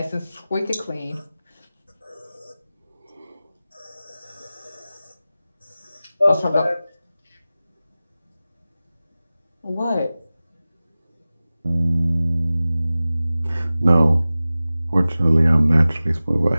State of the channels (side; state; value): both; inverted; correlation -0.96